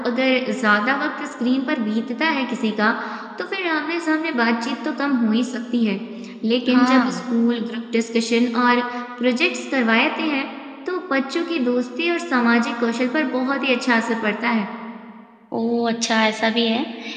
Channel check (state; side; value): identical; both; correlation 1.00